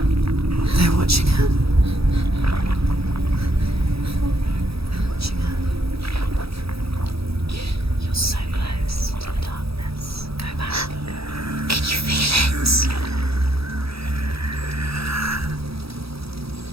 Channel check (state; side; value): late; left; 0.77 ms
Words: They're watching her. They're watching her. You're so close to the darkness. Go back. Can you feel it?